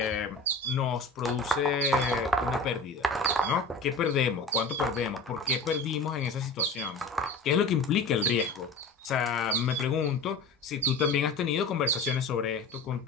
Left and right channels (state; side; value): quieter; right; 3.5 dB